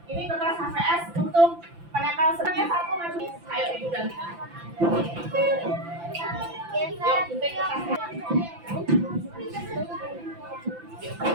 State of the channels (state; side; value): late; left; 5.9 ms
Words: Ini kertas HVS untuk penempel sebenarnya 1 maju. Ayo Ibu ganti. Yuk, gunting kertasnya.